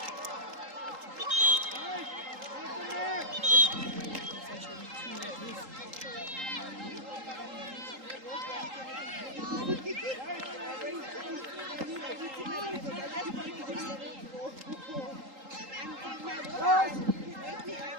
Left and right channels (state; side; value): late; left; 3.8 ms